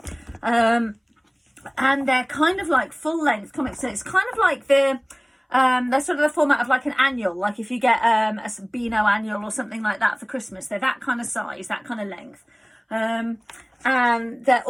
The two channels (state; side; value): identical; both; correlation 1.00